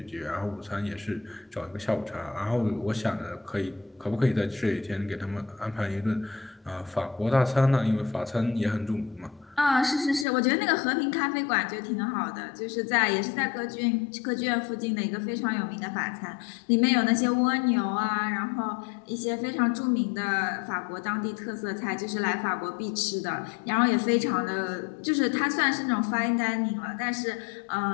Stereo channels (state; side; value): drops out; right; at 10.2 s